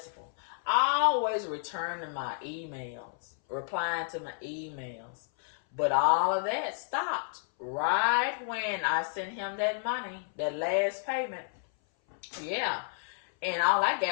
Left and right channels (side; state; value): right; silent; 57 dB below the other